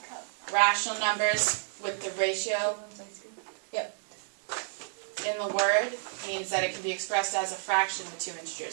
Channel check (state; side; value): silent; left; 58 dB below the other